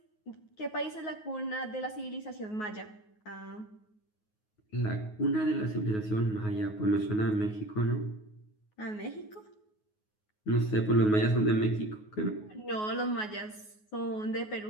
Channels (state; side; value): late; right; 9.4 ms